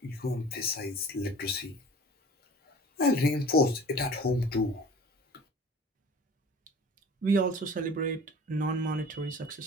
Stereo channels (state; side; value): normal; both; correlation 0.43